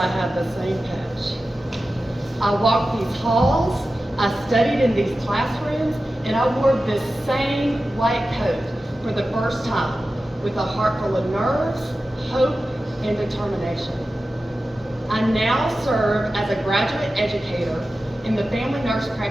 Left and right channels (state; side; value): normal; both; correlation 0.94